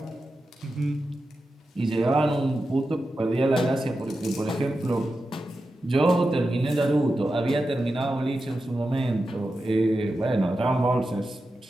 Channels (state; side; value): normal; both; correlation 0.91